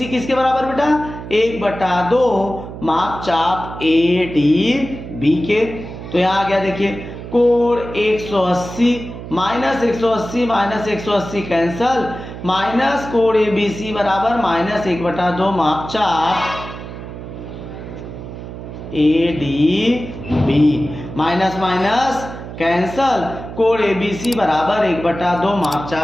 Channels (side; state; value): right; noise; hum, 11 dB below the sound